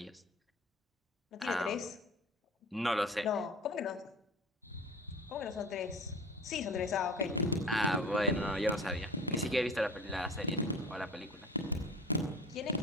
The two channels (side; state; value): both; normal; correlation 0.40